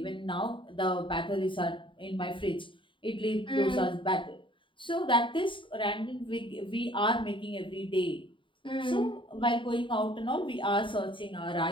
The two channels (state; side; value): late; right; 0.24 ms